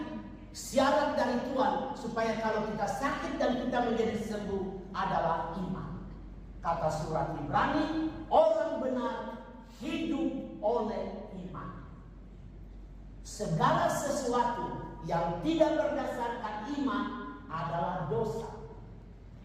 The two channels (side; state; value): both; identical; correlation 1.00